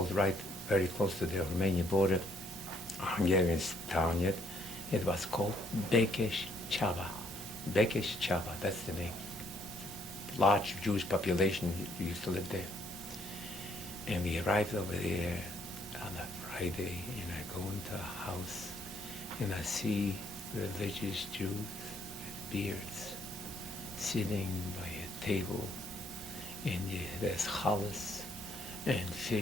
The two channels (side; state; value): both; normal; correlation 0.68